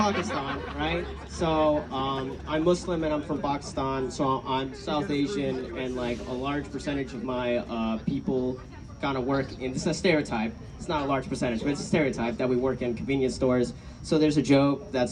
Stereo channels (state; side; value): identical; both; correlation 1.00